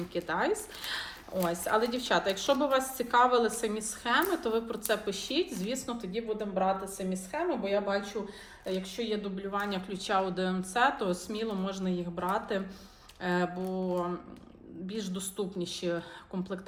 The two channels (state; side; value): identical; both; correlation 1.00